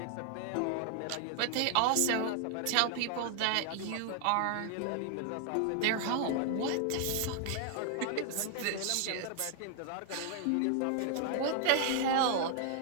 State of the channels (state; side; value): different; both; correlation 0.00